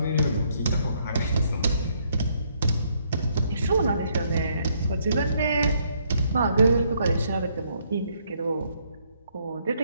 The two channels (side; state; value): both; inverted; correlation -0.70